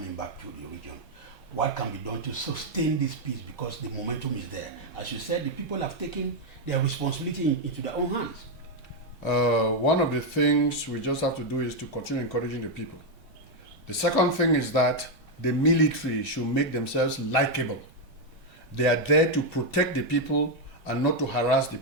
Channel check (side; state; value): both; normal; correlation 0.01